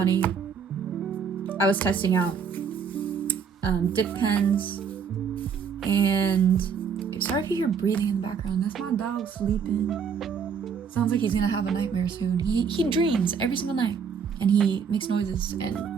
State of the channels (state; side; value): quieter; left; 6.4 dB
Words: I was testing out dip pens, and sorry if you hear breathing in the background. That's my dog sleeping. Sounds like he's gonna have a nightmare soon. He dreams every single night, and he makes noises and